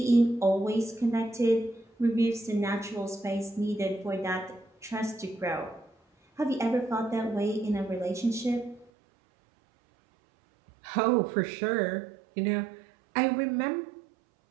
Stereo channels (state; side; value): drops out; left; at 8.9 s